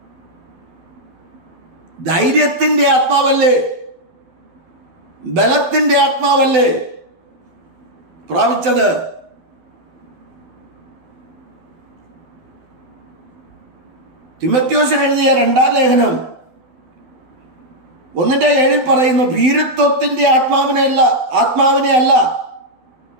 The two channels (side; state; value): left; late; 12 ms